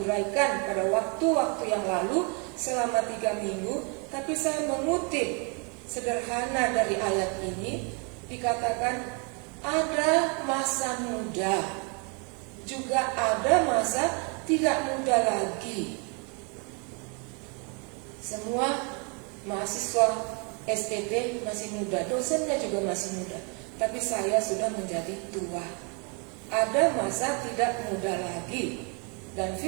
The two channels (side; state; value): left; quieter; 34.9 dB